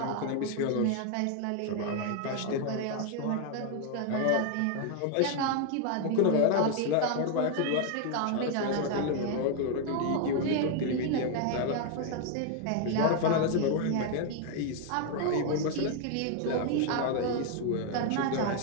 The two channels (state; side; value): different; both; correlation 0.00